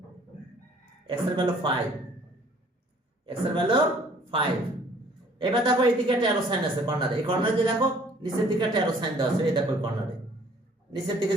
x এর ভ্যালু 5, x এর ভ্যালু 5। এবার দেখো এইদিকে একটা অ্যারো সাইন আছে কর্নারে, এই কর্নারে যে দেখো নিচের দিকে একটা অ্যারো সাইন দেওয়া আছে, এই দেখো কর্নারে নিচের দিকে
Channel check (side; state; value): both; normal; correlation 0.56